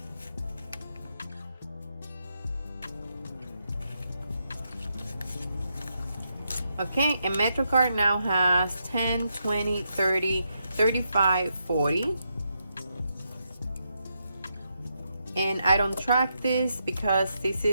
Okay, and MetroCard now has 10, 20, 30, 35, 40. And I don't track this because this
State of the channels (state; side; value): inverted; both; correlation -0.82